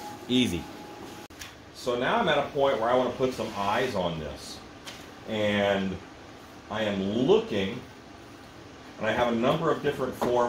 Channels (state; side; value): identical; both; correlation 1.00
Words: Easy. So now I'm at a point where I want to put some eyes on this. And I am looking, and I have a number of different